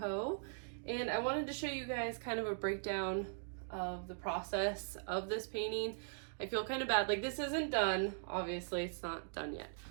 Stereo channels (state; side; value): silent; left; digital silence